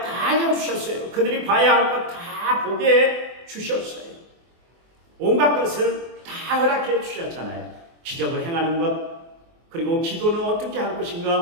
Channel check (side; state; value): left; late; 24 ms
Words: 다 알려주셨어요. 그들이 봐야 할 것 다 보게 주셨어요. 온갖 것을 다 허락해 주셨잖아요. 기적을 행하는 것, 그리고 기도는 어떻게 할